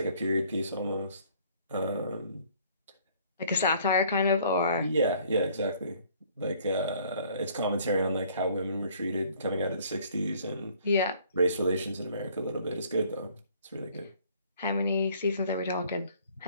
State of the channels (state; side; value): inverted; both; correlation -0.58